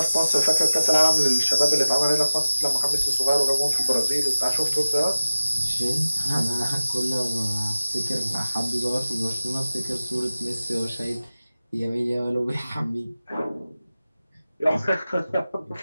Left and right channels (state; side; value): inverted; both; correlation -0.96